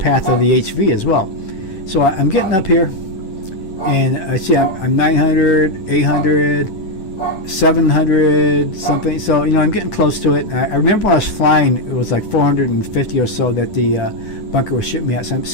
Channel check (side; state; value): right; late; 10 ms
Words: of the HV as well. So I'm getting up here, and I see I'm 900, 800, 700 something. So I'm getting close to it. I remember when I was flying, it was like 450 or so that the bunker was shooting me at. So I'm